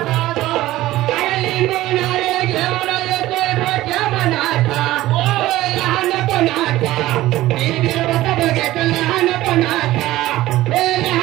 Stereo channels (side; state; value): left; quieter; 16.1 dB